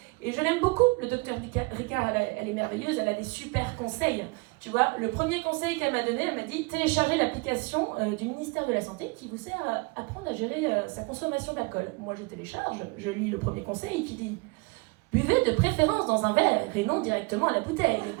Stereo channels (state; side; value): quieter; left; 28.7 dB